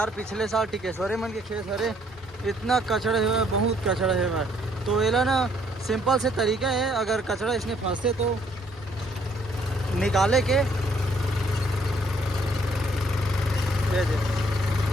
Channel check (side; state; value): both; normal; correlation 0.66